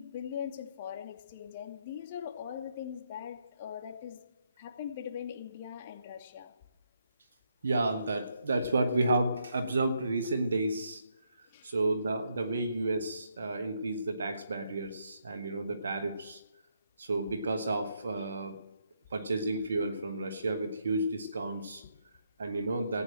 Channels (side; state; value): both; inverted; correlation -0.76